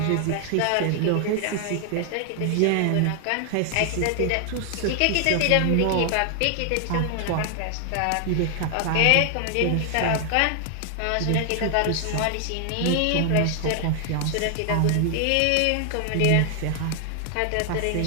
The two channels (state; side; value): different; both; correlation 0.00